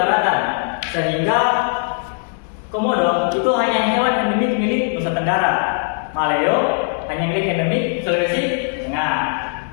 Sehingga komodo itu hanya hewan endemik milik Nusa Tenggara. Maleo hanya milik endemik Sulawesi Tengah.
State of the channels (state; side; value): silent; right; 63 dB below the other